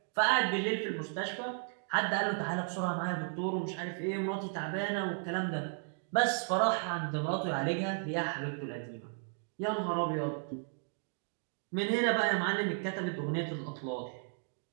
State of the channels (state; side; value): silent; left; 55 dB below the other